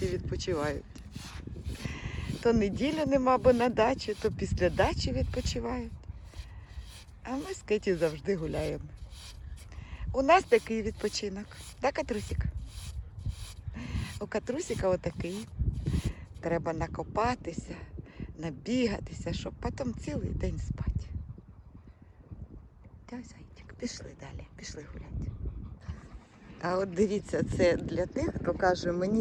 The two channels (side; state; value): both; identical; correlation 1.00